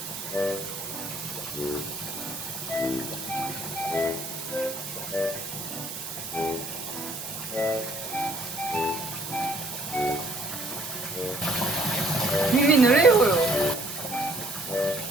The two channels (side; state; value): right; noise; hiss, 8 dB below the sound